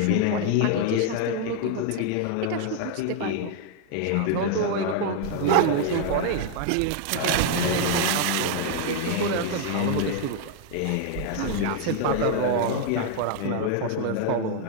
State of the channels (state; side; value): different; both; correlation 0.00